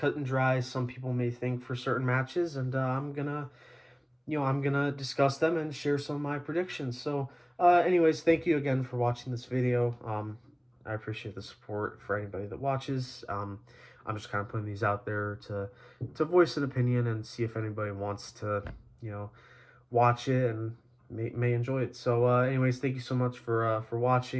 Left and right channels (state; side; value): identical; both; correlation 1.00